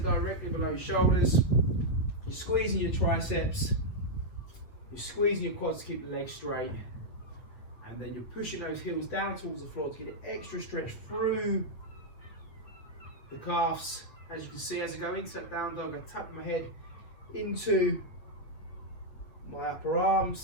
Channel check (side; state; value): right; late; 8.4 ms